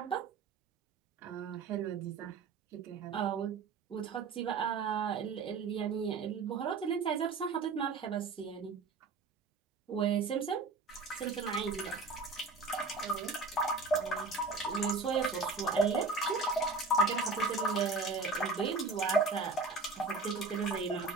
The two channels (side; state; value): left; quieter; 4.1 dB